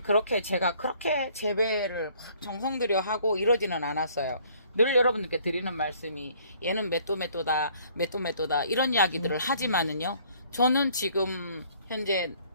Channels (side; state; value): both; inverted; correlation -0.60